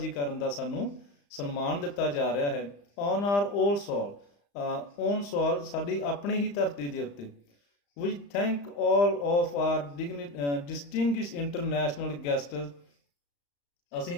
ਕਰਨ ਦਾ ਸਾਨੂੰ ਸਨਮਾਨ ਦਿੱਤਾ ਜਾ ਰਿਹਾ ਹੈ। On our own soil, own soil, ਸਾਡੀ ਆਪਣੀ ਹੀ ਧਰਤੀ ਦੇ ਉੱਤੇ। We thank all of our distinguished international guests, ਅਸੀਂ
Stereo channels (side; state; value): right; late; 35 ms